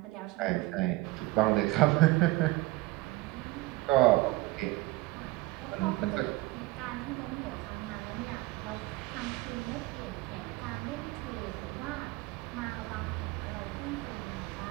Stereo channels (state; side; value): quieter; left; 19.9 dB